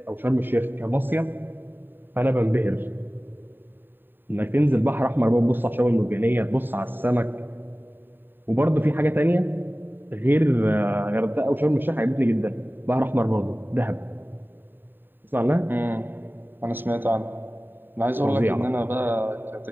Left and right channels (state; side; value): late; left; 0.094 ms